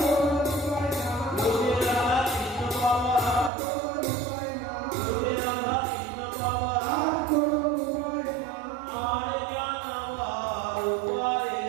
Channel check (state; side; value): drops out; left; at 3.5 s